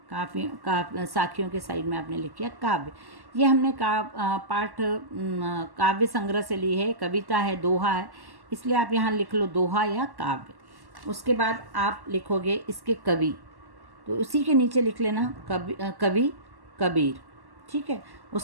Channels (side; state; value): left; late; 1.1 ms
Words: साखियों के साइड में आपने लिख किया काव्य। ये हमने पाठ काव्य संग्रह से ली है, कविता है, दोहा है, इसलिए आप यहाँ लिख लो दोहा या काव्य। उसके बाद आप लिखोगे इसके कवि, तो उसी के नीचे लिख लेना कवि कबीर, ठीक है।